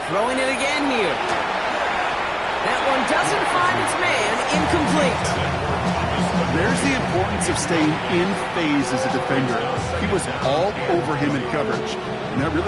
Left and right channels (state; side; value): identical; both; correlation 1.00